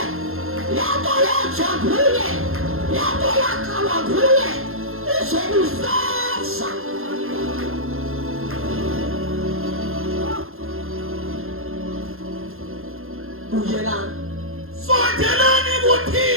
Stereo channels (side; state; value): left; late; 0.61 ms